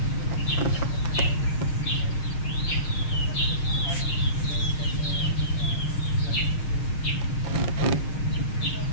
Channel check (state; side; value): late; right; 6.5 ms